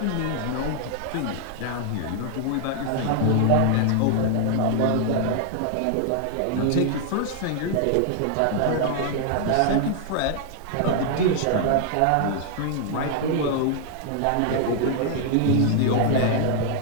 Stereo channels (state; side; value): different; both; correlation 0.00